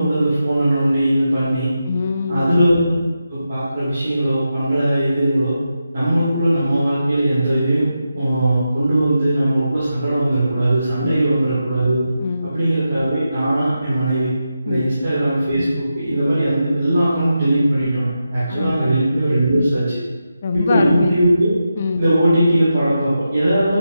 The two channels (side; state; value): both; inverted; correlation -0.88